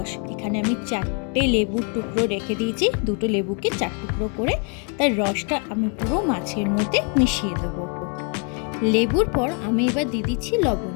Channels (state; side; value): quieter; right; 35.9 dB